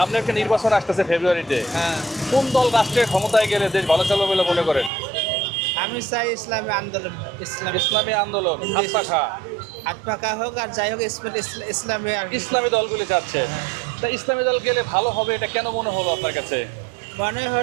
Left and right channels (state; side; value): drops out; left; at 4.9 s